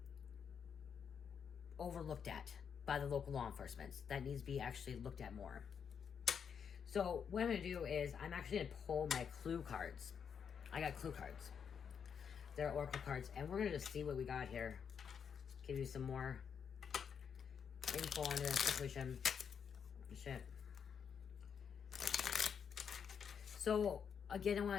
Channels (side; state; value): right; quieter; 7.2 dB